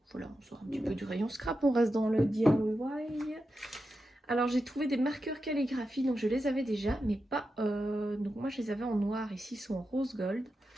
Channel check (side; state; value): both; normal; correlation 0.89